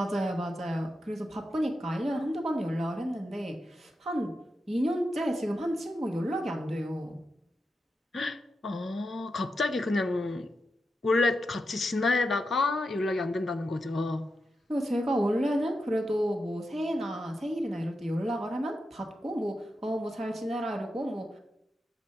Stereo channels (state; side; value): normal; both; correlation 0.88